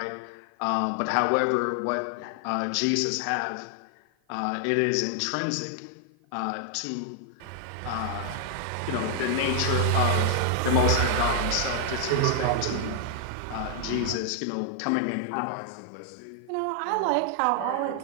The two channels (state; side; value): different; both; correlation 0.00